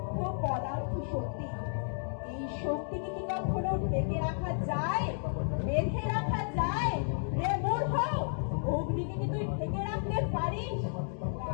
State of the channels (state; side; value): silent; right; digital silence